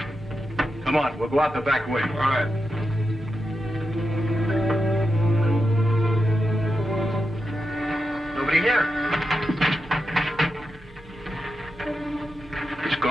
Come on, we'll go out the back way. All right. Nobody here. It's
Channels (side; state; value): both; normal; correlation 0.88